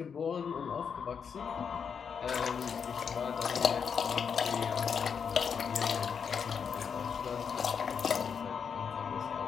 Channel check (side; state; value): right; quieter; 6.7 dB